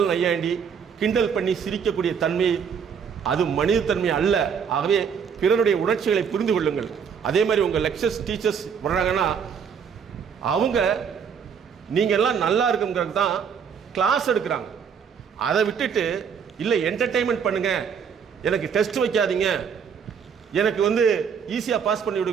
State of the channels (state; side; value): quieter; left; 6.9 dB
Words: நையாண்டி கிண்டல் பண்ணி சிரிக்கக்கூடிய தன்மை அது மனித தன்மை அல்ல. ஆகவே பிறருடைய உணர்ச்சிகளை புரிந்து கொள்ளுங்கள். அதே மாதிரி உங்கள் லெக்சர்ஸ் டீச்சர்ஸ் வர்றாங்கன்னா அவங்க நீங்கள் எல்லாம் நல்லா இருக்குங்கிறது தான் கிளாஸ் எடுக்கிறாங்க. அதை விட்டுட்டு இல்லை என்டர்டெயின்மெண்ட் பண்ணுங்க, எனக்கு டெஸ்ட் வைக்காதீங்க, எனக்கு வந்து ஈஸியாக பாஸ் பண்ணி